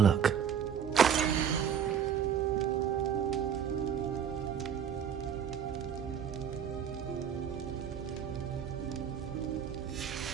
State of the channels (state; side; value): quieter; left; 8.1 dB